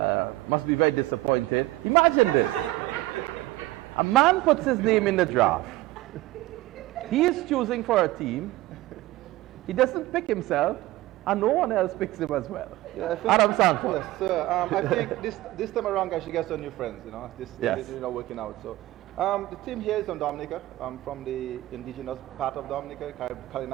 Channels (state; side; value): quieter; left; 17.6 dB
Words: Must be very disappointed. Imagine this. A man puts his name in the draft. He is choosing for a team. He doesn't pick himself. and no one else picks him as well. Yeah, I think, Adam Sanford. Yes, sir. I think this time around, guys, she gets some new friends. This Yes. is working out. So, the team here is from Dominica, from the indigenous part of Dominica,